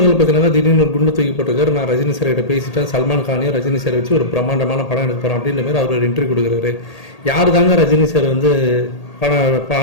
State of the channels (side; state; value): right; late; 1.8 ms